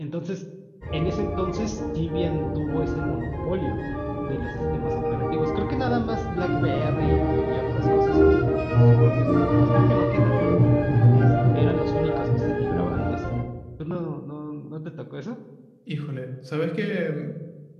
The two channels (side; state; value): both; identical; correlation 1.00